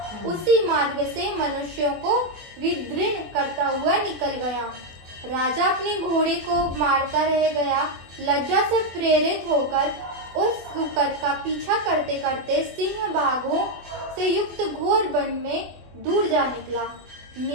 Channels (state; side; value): late; left; 24 ms